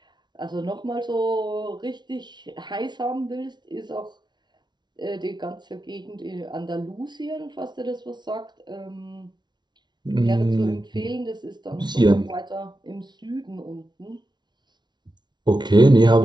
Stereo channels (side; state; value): left; late; 0.21 ms